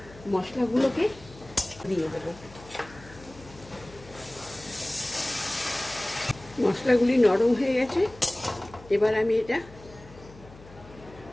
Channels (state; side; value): noise; left; hum, 20 dB below the sound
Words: মশলাগুলোকে দিয়ে দেব। মশলাগুলি নরম হয়ে গেছে, এবার আমি এটা